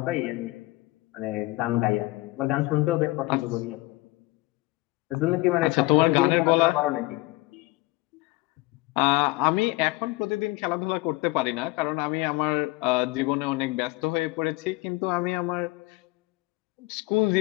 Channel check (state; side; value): quieter; right; 21.8 dB